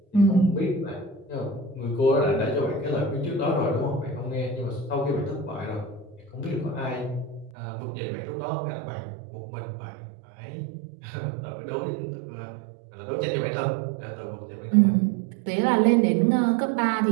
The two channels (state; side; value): drops out; left; at 7.5 s